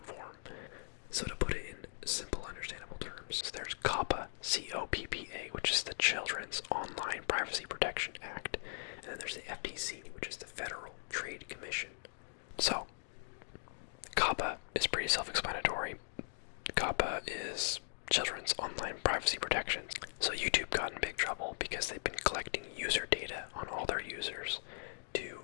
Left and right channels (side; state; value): right; silent; digital silence